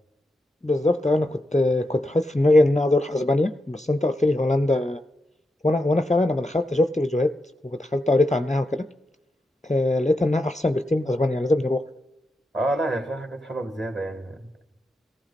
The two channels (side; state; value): both; normal; correlation 0.86